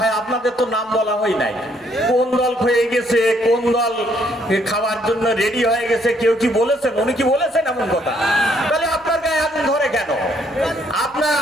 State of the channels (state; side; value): normal; both; correlation 0.68